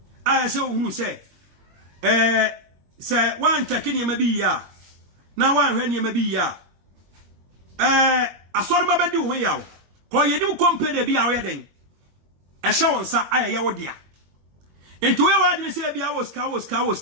a say ohunu say say wan check ni ma bi ya na wan hwe ni ma bi ya asori ma bedi wo ya ko ye ni company bia wo ye den e sha won sa aye wo dia enti we wa adini say bia wo ska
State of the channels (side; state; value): left; late; 21 ms